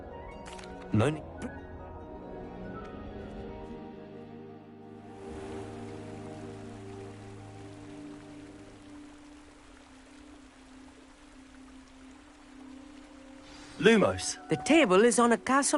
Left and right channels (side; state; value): both; identical; correlation 1.00